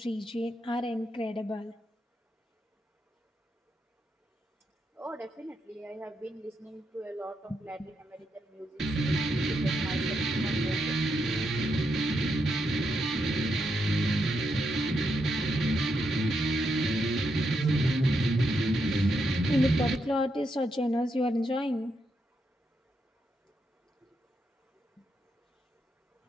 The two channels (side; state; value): both; normal; correlation 0.81